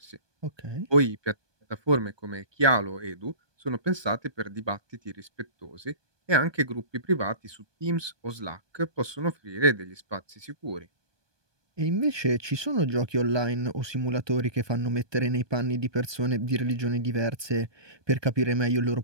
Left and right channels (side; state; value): left; late; 1.2 ms